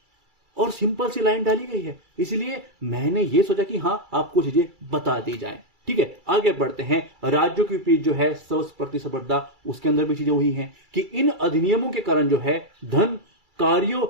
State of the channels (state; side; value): late; left; 2.3 ms